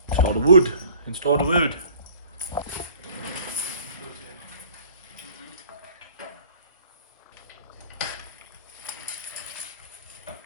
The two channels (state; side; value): inverted; both; correlation -0.50